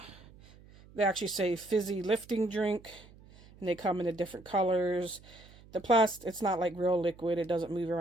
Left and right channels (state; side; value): noise; right; hum, 23 dB below the sound